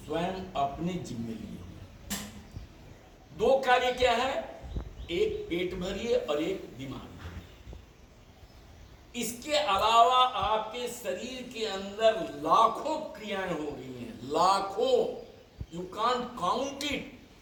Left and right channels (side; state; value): both; identical; correlation 1.00